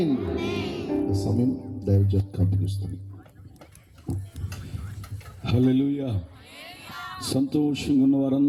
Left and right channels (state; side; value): identical; both; correlation 1.00